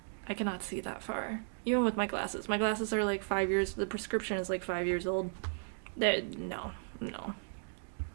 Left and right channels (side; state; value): left; silent; digital silence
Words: I cannot see that far. Even with my glasses. My glasses are like 5 years, the prescription is like 5 years old. No.